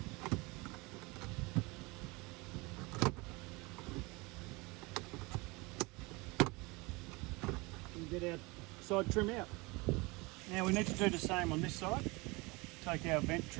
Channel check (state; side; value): quieter; left; 25.3 dB